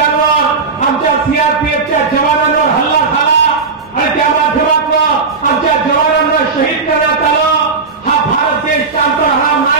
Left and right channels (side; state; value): left; quieter; 4.7 dB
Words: आमच्या सीआरपीएफच्या जवानांवर हल्ला झाला आणि त्या माध्यमातून आमच्या जवानांना शहीद करण्यात आलं. हा भारत देश शांत राहणार